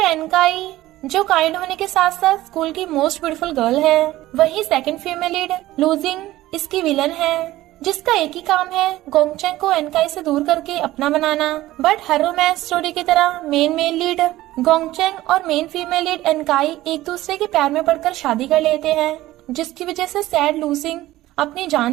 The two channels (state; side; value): quieter; left; 16.1 dB